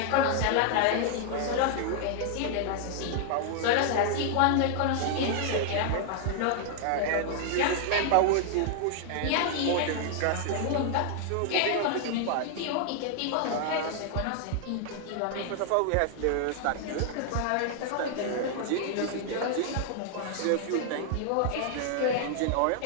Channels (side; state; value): both; different; correlation 0.00